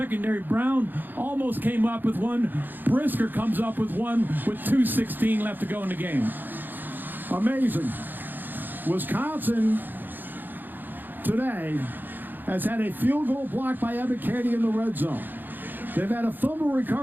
Brown almost came up with one. Brisker comes up with one with 2:16 left to go in the game. Amazing. Wisconsin today has had a field goal blocked by Evan Kennedy in the red zone. They've had a fumble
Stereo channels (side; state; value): left; late; 0.090 ms